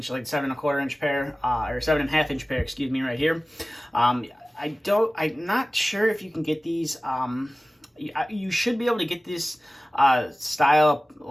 like 7 1/4 inch pair, or 7 1/2 inch pair, excuse me, right here. I'm not sure if you can get these. You should be able to get this style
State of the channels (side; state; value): both; normal; correlation 0.97